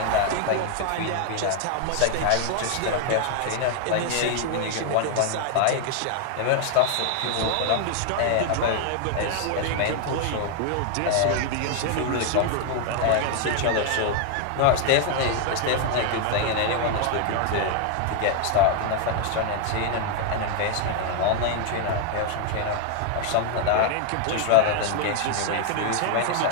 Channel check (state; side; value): different; both; correlation 0.00